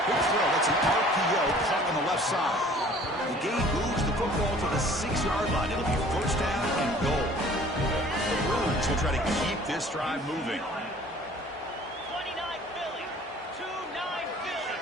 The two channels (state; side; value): normal; both; correlation 0.51